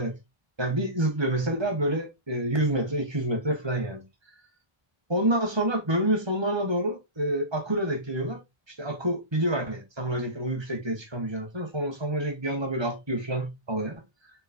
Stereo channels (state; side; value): late; left; 1.3 ms